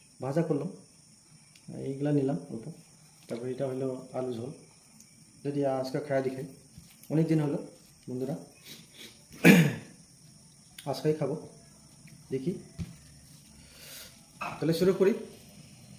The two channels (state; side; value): identical; both; correlation 1.00